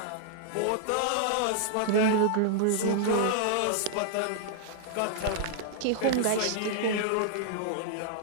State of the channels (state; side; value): different; both; correlation -0.01